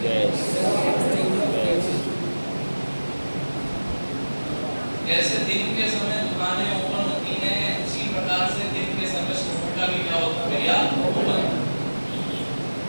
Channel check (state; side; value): inverted; both; correlation -1.00